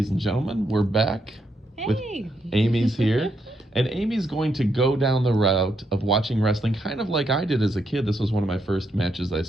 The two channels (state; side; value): normal; both; correlation 0.79